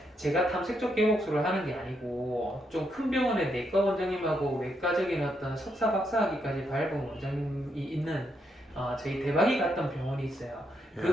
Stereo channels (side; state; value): both; normal; correlation 0.79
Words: 제가 탐색적 개복술을 하는 게 아니고 좀 큰 병원의 내과 원장님하고 외과적인 어떤 석사 박사학위까지 밟은 원장님이 있는 저희 대박이 갔던 병원이 있어요.